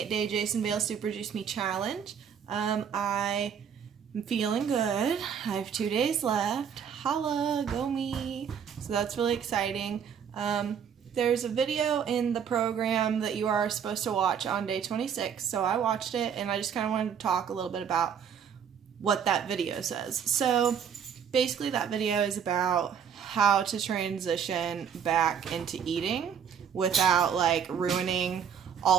Jason Vale Super Juice Me Challenge. I am feeling good. I have 2 days left. Holla, go me. So that's really exciting. There's a video in the program that you are supposed to watch on day 26, so I watched it and I just kind of wanted to talk a little bit about what that video says. So basically that video is about how to transition back into eating without like ruining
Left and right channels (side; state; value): left; quieter; 7.7 dB